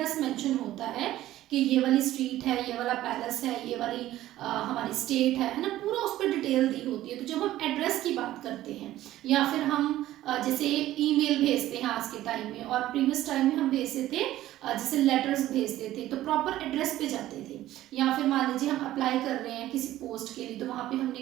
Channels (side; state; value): left; quieter; 14.4 dB